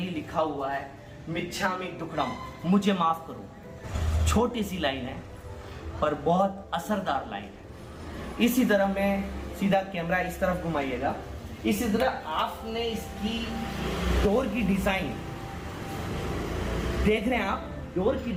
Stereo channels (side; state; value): both; identical; correlation 1.00